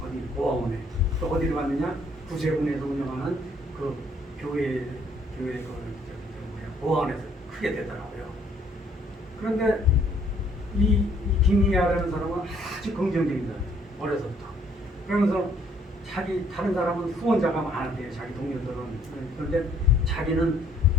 어디 보아원에. 또 어디로 갔느냐? 구세군에서 운영하는 그 교회 보아원에서 크게 되더라고요. 그런데 이 김희야라는 사람은 아주 긍정적이다. 어려서부터. 그러면서 다른 사람은 후원자가 많은데요. 자기 동료들은. 그런데 자기는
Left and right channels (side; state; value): both; normal; correlation 0.64